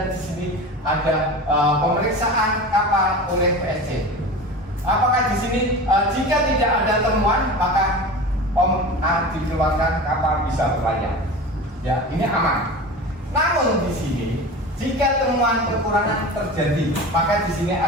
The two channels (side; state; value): both; normal; correlation 0.32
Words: di sini ada pemeriksaan kapal oleh PSC. Apakah di sini jika tidak ada temuan maka dikeluarkan kapal bisa berlayar. Ya, ini aman. Namun di sini Jika temuan kekurangan terjadi, maka di sini